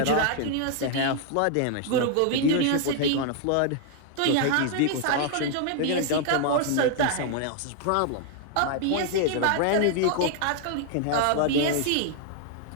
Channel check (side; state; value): both; different; correlation 0.00